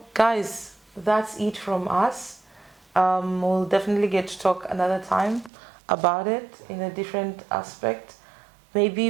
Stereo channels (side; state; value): left; drops out; at 5.5 s